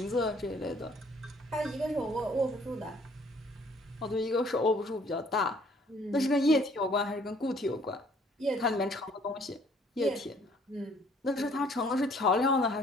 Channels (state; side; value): normal; both; correlation 0.60